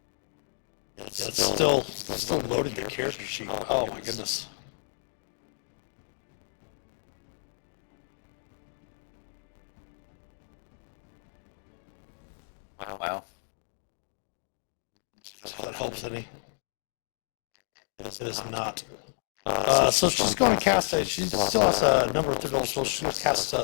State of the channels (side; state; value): right; silent; digital silence